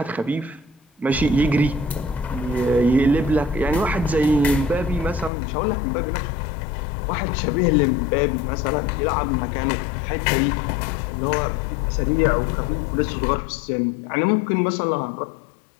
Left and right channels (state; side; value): drops out; right; at 5.3 s